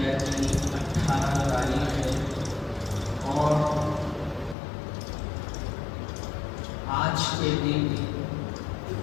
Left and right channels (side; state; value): right; drops out; at 4.5 s